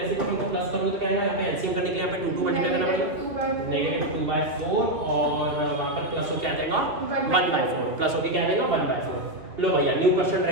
को प्लस करूँगा तो क्या आएगा? यहाँ पे एलसीएम करने के लिए यहाँ पे 2 मल्टीप्लाई करना पड़ेगा, -2/4 और वहाँ पर प्लस हो क्या आ जाएगा? 1/4 प्लस होके क्या आ जाएगा? 1/4। लो भैया न्यू क्वेश्चन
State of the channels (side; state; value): left; late; 2.9 ms